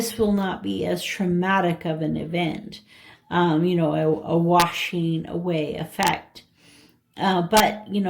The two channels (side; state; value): both; identical; correlation 1.00